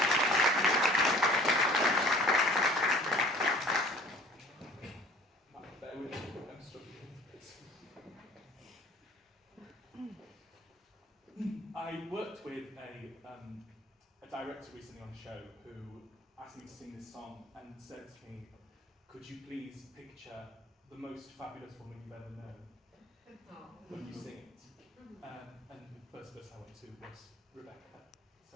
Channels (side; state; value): both; normal; correlation 0.49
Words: I worked with a director recently on the show who asked me to sing this song and said to me, could you please picture the most fabulous woman you've ever known when you sing it? And the first person I went to was Rebecca.